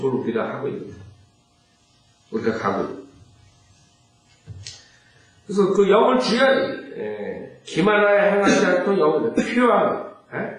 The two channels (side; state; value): both; identical; correlation 1.00